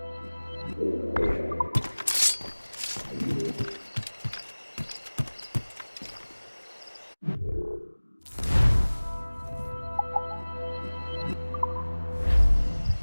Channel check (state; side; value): inverted; both; correlation -1.00